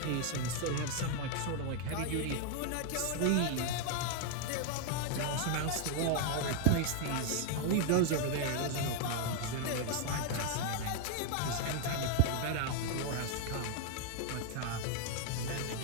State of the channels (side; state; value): both; different; correlation 0.00